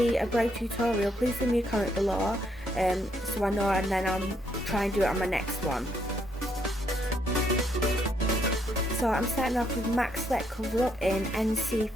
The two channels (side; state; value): both; normal; correlation 0.73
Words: a brow tutorial, please leave me a comment below so I know, and then I'll try and do it on my next one. So I'm starting off with MAC Select Cover Up in